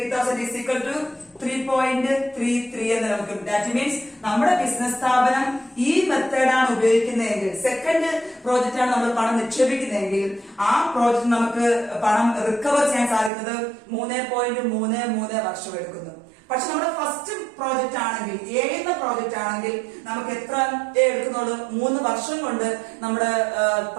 is equal to 3.33 എന്ന് നമുക്ക്. ദാറ്റ് മീൻസ് നമ്മുടെ ബിസിനസ് സ്ഥാപനം ഈ മെത്തേഡാണ് ഉപയോഗിക്കുന്നതെങ്കിൽ, സെക്കൻഡ് പ്രോജക്റ്റ് ആണ് നമ്മൾ പണം നിക്ഷേപിക്കുന്നതെങ്കിൽ, ആ പ്രോജക്റ്റ് നമുക്ക് പണം റിക്കവർ ചെയ്യാൻ സാധിക്കുന്നത് 3.33 വർഷം എടുക്കുന്നു. പക്ഷെ നമ്മുടെ ഫസ്റ്റ് പ്രോജക്റ്റ് ആണെങ്കിൽ, എന്ന പ്രോജക്റ്റ് ആണെങ്കിൽ നമുക്ക് എത്ര എടുക്കുന്നുള്ളൂ? 3 വർഷം കൊണ്ട് നമ്മുടെ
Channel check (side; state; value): left; drops out; at 13.3 s